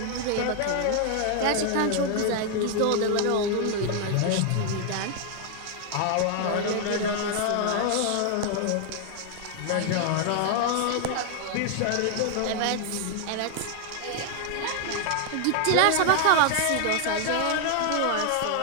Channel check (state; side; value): different; both; correlation 0.00